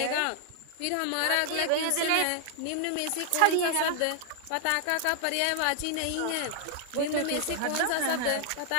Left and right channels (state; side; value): different; both; correlation 0.00